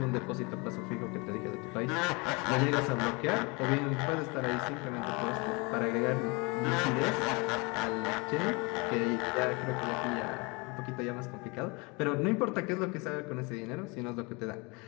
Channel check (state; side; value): quieter; right; 28.4 dB